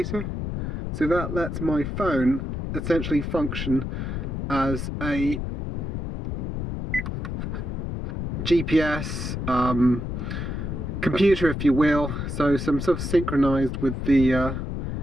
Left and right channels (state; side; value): noise; left; rumble, 4 dB below the sound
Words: So that lets my phone essentially function as a GPS, computer, if you will, so some sort of synchronized with the